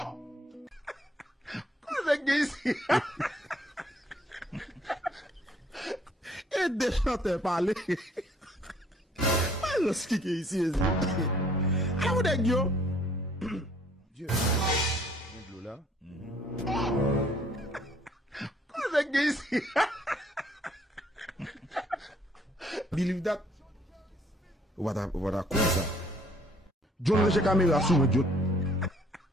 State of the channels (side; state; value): both; normal; correlation 0.62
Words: Cosa que ici? Et des chanteurs parler. Pas ce qui est ici. Ah, vous êtes yo? Dieu. Viens de l'eau là. Cosa que ici? Believe that? What a cosa. John le caméra sous moi, John.